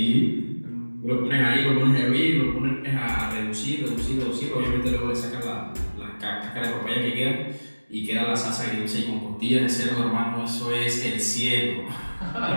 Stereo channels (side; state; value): both; inverted; correlation -1.00